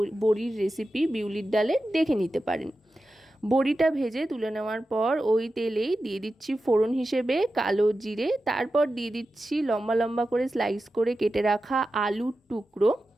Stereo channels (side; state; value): both; normal; correlation 0.92